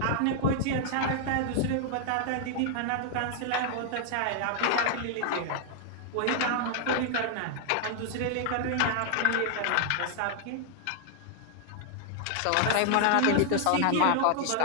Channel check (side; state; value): both; different; correlation 0.00